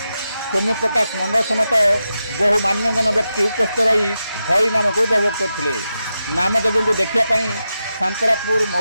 ସୌମ୍ୟ ପ୍ରକାଶ ମଣ୍ଡଳ ସମେତ ବହୁ ମାନ୍ୟଗଣ୍ୟ ବ୍ୟକ୍ତି ଉପସ୍ଥିତ ରହି ହରିନାମକୁ ଉପଭୋଗ କରିଥିଲେ। ନାମଯଜ୍ଞକୁ ଦେଖିବା ପାଇଁ ସାନ୍ତରାପୁର,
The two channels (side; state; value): both; inverted; correlation -0.89